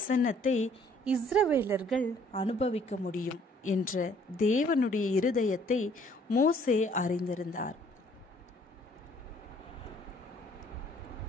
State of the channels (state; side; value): normal; both; correlation 0.60